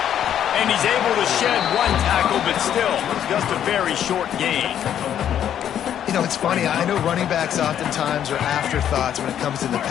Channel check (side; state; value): right; quieter; 10.0 dB